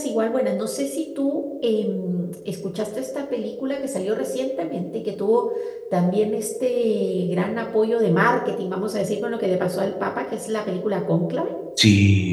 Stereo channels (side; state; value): both; identical; correlation 1.00